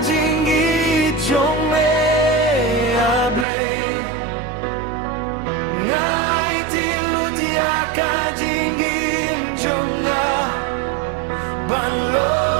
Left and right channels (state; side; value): drops out; left; at 3.5 s